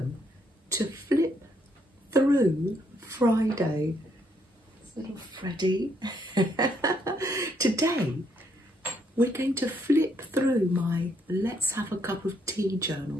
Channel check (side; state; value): both; normal; correlation 0.72